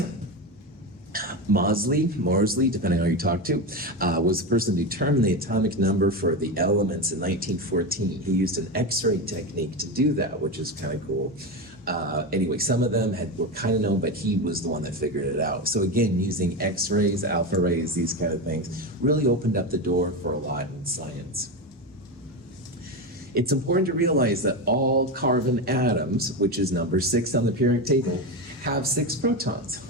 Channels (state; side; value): normal; both; correlation 0.17